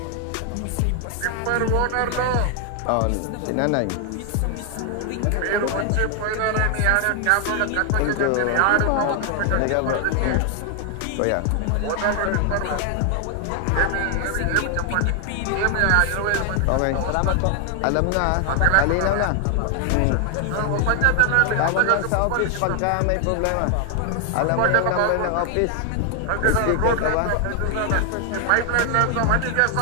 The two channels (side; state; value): both; different; correlation 0.00